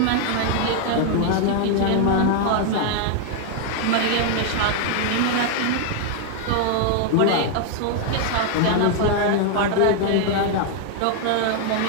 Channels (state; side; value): different; both; correlation 0.00